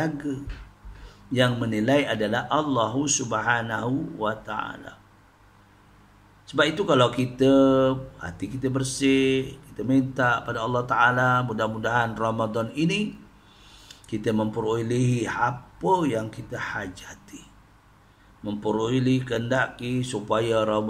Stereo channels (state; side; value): identical; both; correlation 1.00